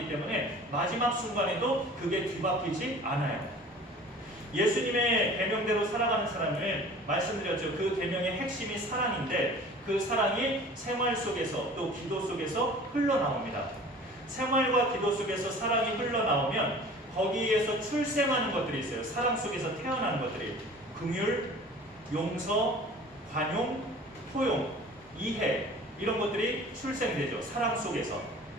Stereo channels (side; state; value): both; normal; correlation 0.44